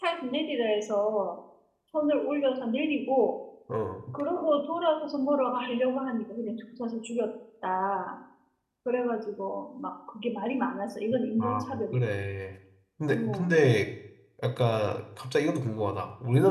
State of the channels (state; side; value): identical; both; correlation 1.00